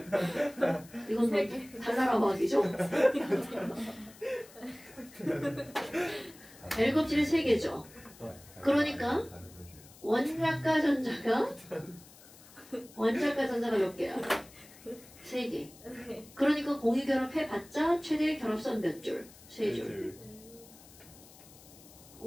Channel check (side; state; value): left; noise; hiss, 22 dB below the sound